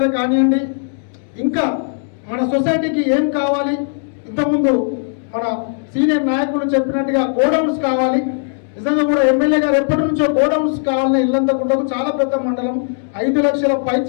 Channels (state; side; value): silent; right; digital silence